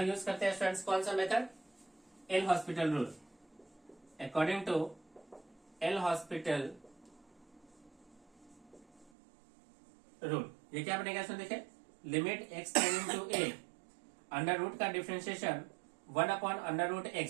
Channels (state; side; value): drops out; left; at 9.1 s